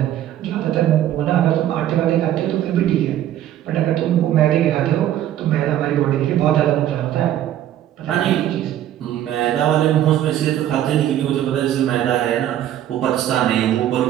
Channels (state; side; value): quieter; left; 11.9 dB